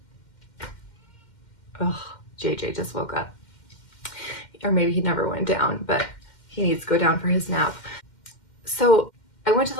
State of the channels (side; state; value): right; late; 2.1 ms